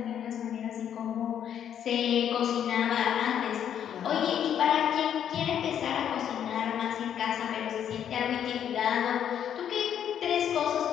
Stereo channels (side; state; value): right; quieter; 9.3 dB